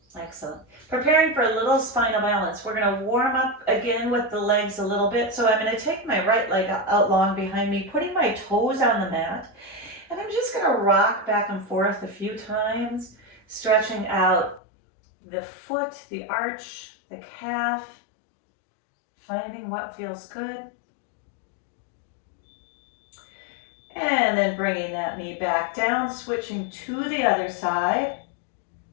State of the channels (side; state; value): right; drops out; at 14.6 s